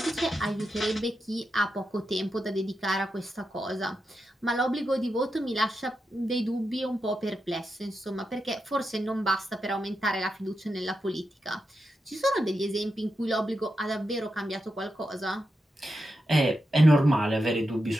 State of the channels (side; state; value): both; normal; correlation 0.87